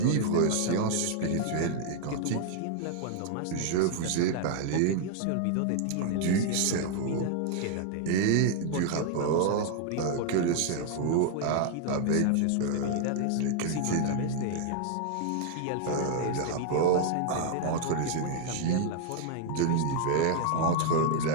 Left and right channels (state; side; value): different; both; correlation 0.00